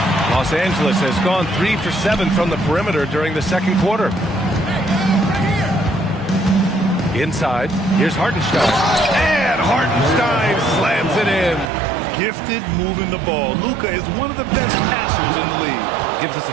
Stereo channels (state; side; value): drops out; left; at 11.7 s